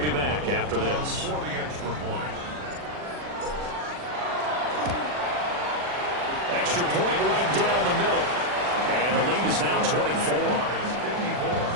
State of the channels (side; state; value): left; late; 40 ms